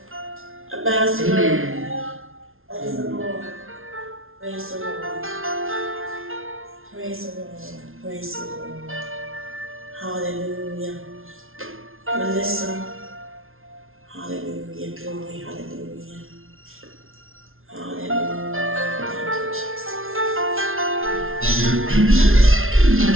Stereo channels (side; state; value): left; late; 0.61 ms